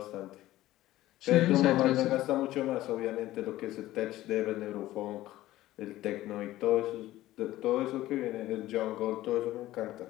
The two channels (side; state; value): right; quieter; 15.6 dB